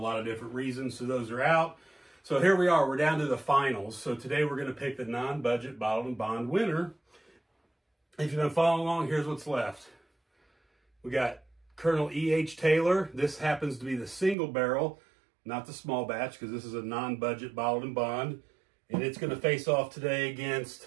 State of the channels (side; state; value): left; drops out; at 14.4 s